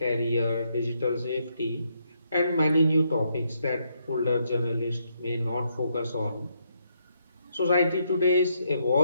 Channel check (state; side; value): inverted; both; correlation -0.76